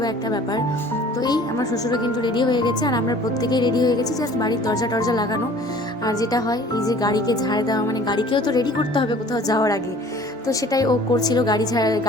একটা ব্যাপার। তো এই আমার শ্বশুরও কিন্তু রেডি হয়ে গেছে, আর আমরা প্রত্যেকেই রেডি হয়ে গেছি, জাস্ট বাড়ির দরজা টরজা লাগানো। আর যেটা হয় এই যে গাড়িকে ঝাড় দেওয়া, মানে গাড়িকেও তো রেডি করতে হবে কোথাও যাওয়ার আগে। তো সেটাই ও করছিল,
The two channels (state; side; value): normal; both; correlation 0.49